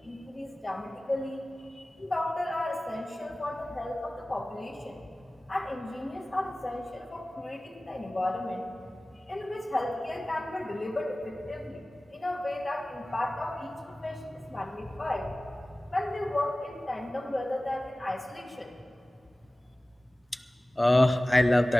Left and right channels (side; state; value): both; normal; correlation 0.98